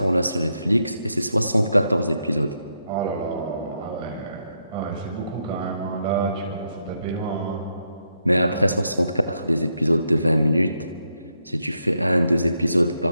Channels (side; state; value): both; inverted; correlation -0.80